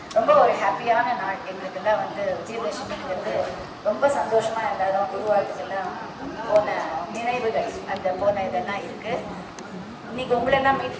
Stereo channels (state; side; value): identical; both; correlation 1.00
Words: ரொம்ப ஒரு ஹாப்பியான நாள் எங்களுக்கெல்லாம் வந்து விஜயதசமிங்கிறது ரொம்ப சந்தோஷமாக எல்லாரும் குருவாழ்த்துக்கெல்லாம் போன நினைவுகள் அந்த போன இதெல்லாம் இருக்குது. இன்னைக்கு உங்களெல்லாம் மீட்